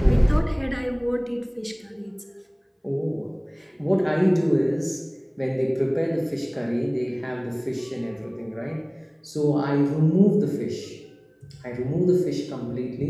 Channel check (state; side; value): identical; both; correlation 1.00